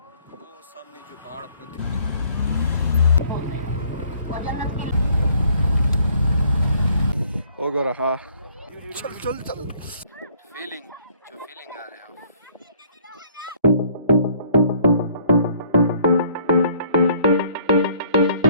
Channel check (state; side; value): inverted; both; correlation -0.60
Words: वो सामने जो पहाड़ आपको होगा रहा। चल चल चल, फीलिंग आ रही है।